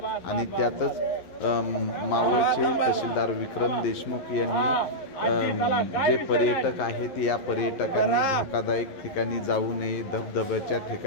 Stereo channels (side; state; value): right; late; 11 ms